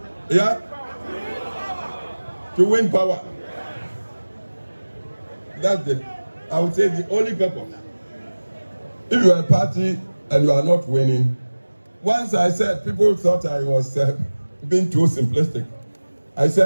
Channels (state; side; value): inverted; both; correlation -1.00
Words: Yeah? To win power. That's I would say the only purpose. If you are a party and you are not winning, once I said, people thought I was being too simplistic. I